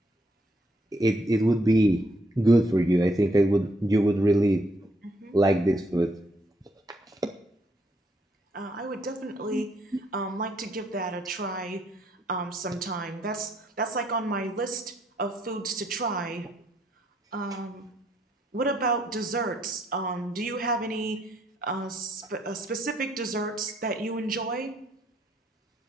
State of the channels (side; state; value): both; normal; correlation 0.72